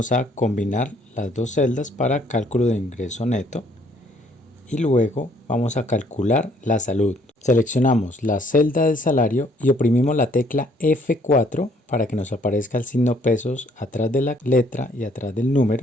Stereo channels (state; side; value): normal; both; correlation 0.64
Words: a combinar las dos celdas para cálculo de ingreso neto y luego vamos a calcular la salud. Seleccionamos la celda del salario y oprimimos la tecla F4 para que nos aparezca el signo pesos atrás de la letra y atrás del